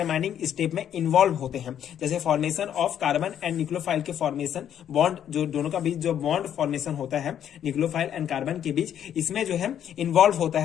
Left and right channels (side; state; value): right; quieter; 9.8 dB